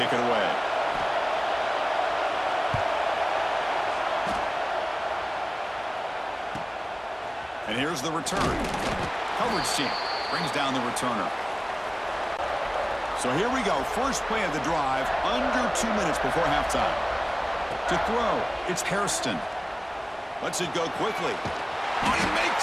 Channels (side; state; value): both; identical; correlation 1.00